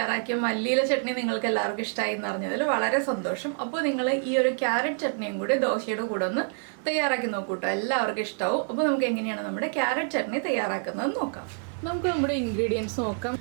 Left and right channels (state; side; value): silent; left; 59 dB below the other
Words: മല്ലിയില ചട്നി നിങ്ങൾക്ക് എല്ലാവർക്കും ഇഷ്ടമായി എന്ന് അറിഞ്ഞതിൽ വളരെ സന്തോഷം. അപ്പോൾ നിങ്ങൾ ഈ ഒരു ക്യാരറ്റ് ചട്നിയും കൂടി ദോശയുടെ കൂടെ ഒന്ന് തയ്യാറാക്കി നോക്കൂട്ടോ, എല്ലാവർക്കും ഇഷ്ടമാവും. അപ്പോൾ നമുക്ക് എങ്ങനെയാണ് നമ്മുടെ ക്യാരറ്റ് ചട്നി തയ്യാറാക്കുന്നത് നോക്കാം. നമുക്ക് നമ്മുടെ ഇൻഗ്രീഡിയൻസ് നോക്കാം.